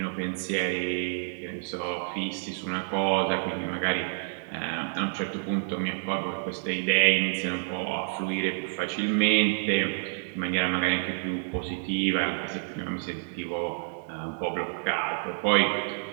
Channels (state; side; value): silent; left; digital silence